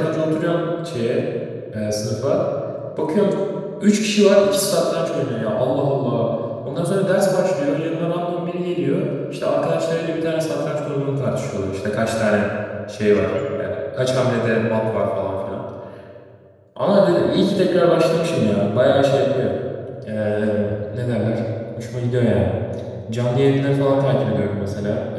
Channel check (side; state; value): both; identical; correlation 1.00